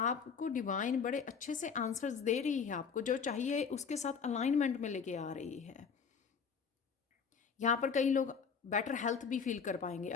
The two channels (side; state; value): right; quieter; 6.2 dB